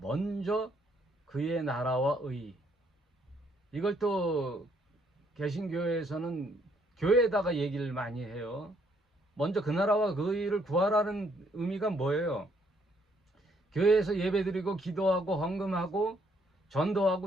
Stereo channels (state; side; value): normal; both; correlation 0.69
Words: 그의 나라와 의. 이걸 또 개신교회에서는 교회에다가 얘기를 많이 해요. 먼저 그 나라와 그 의를 구하라는 의미가 뭐예요? 교회에서 예배드리고 기도하고 헌금하고